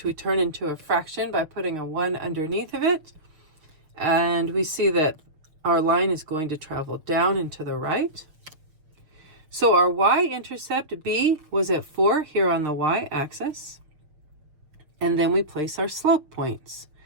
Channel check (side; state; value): left; late; 6.4 ms